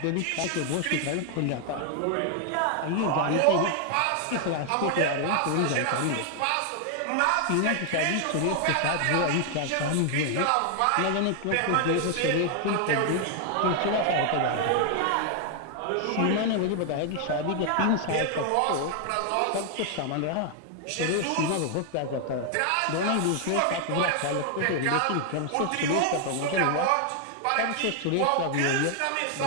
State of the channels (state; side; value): different; both; correlation 0.00